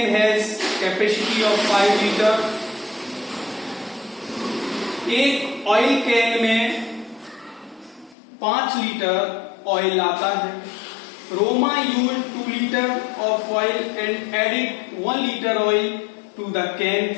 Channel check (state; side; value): drops out; right; at 8.2 s